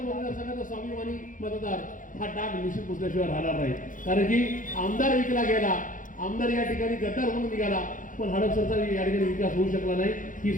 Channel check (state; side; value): late; right; 0.38 ms